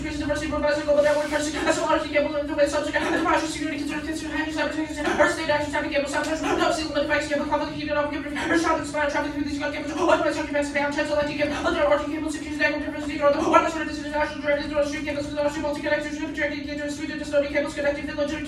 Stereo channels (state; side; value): identical; both; correlation 1.00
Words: diversity, provides a global network, as well RC cable in the way subject, and partial security consider handling cyber state action, type cable, sometimes no seal limit effects, cable, conflict, heat, and off, or shot and spire, traffic through these gun cables, otherwise, occupancy, down, chance, electric cable, other RC cables, secures, negative difference, or the one sort of international directed to street cables, with RC multi-connectors, projecting into Sweden, custodial cables, connecting the